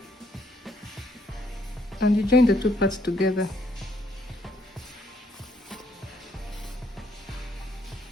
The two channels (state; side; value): normal; both; correlation 0.70